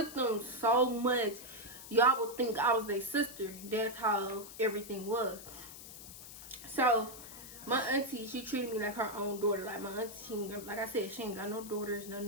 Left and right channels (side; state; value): left; noise; hiss, 14 dB below the sound